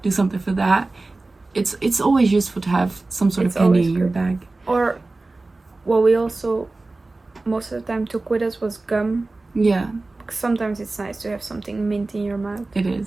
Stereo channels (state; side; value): quieter; left; 3.2 dB